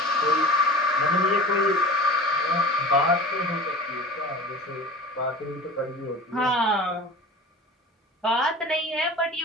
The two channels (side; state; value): both; normal; correlation 0.37